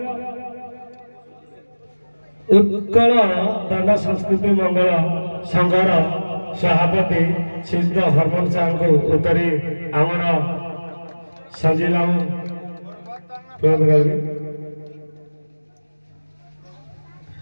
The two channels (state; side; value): inverted; both; correlation -1.00